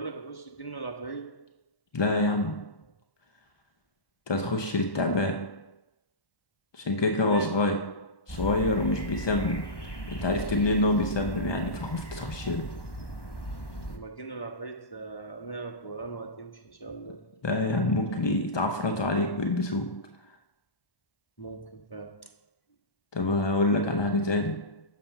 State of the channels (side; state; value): right; late; 1.2 ms